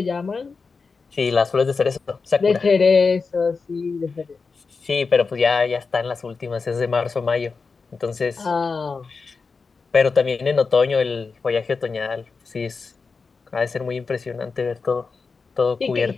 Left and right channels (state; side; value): quieter; right; 4.7 dB